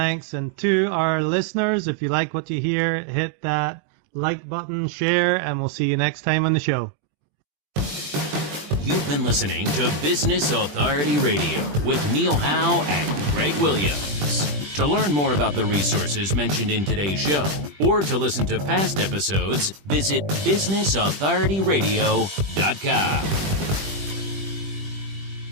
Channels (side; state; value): left; late; 20 ms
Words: And to our listeners, if you like what you hear, hit that like button, share, and we'll see you next time on the show. You've been listening to Business Authority Radio with Neil Howe and Greg Williams. To learn more about the resources mentioned in today's show or to listen to past episodes, visit businessauthorityradio.com.